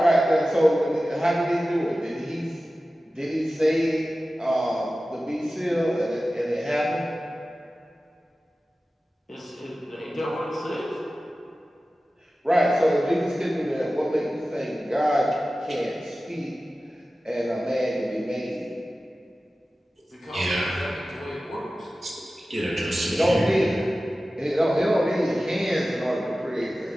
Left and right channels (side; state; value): both; normal; correlation 0.95